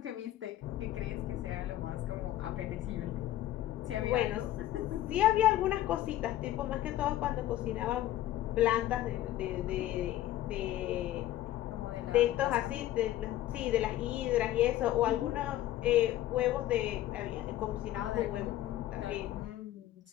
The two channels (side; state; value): right; quieter; 14.0 dB